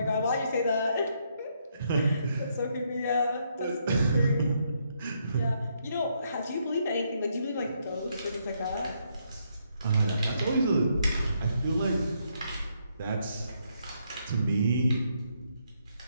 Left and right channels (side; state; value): both; inverted; correlation -0.75